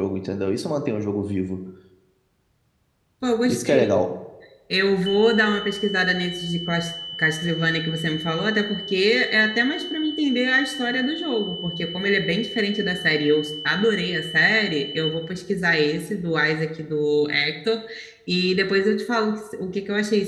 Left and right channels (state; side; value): identical; both; correlation 1.00